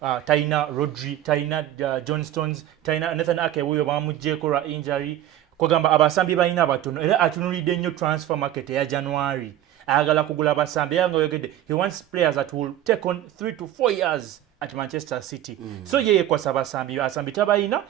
taina Rodri, taina John Stones, taina Nathan Ake wuyo bamujjeko lwa injury. Kwagamba abasambi balina abatono era atunulidde nnyo transfer market ya January. Ayagala kugula abasambi yanga yogedde he wants players that will take on 3 to 4 years at Manchester City. So yeye kwasa abasambi tabalina,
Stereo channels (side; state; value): left; quieter; 12.6 dB